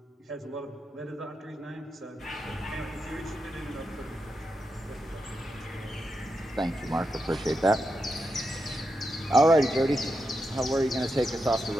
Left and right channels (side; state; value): both; normal; correlation 0.86